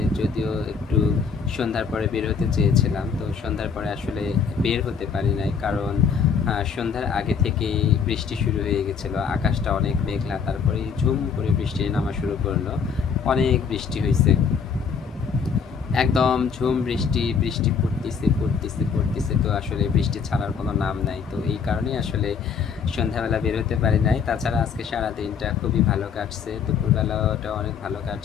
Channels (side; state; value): right; quieter; 6.2 dB